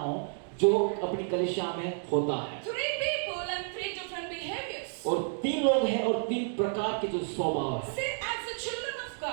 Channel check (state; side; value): silent; left; digital silence